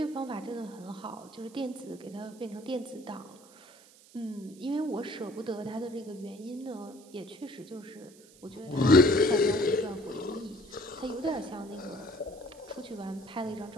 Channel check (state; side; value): noise; right; hiss, 24 dB below the sound